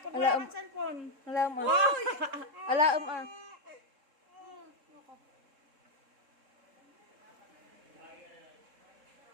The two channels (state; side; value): late; left; 3.7 ms